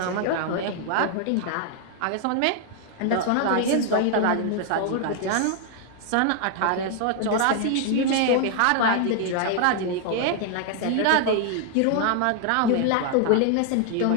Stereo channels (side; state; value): both; different; correlation 0.00